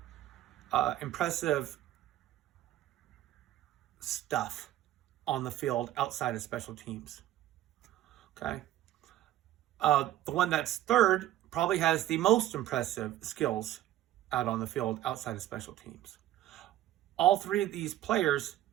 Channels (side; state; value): left; quieter; 13.6 dB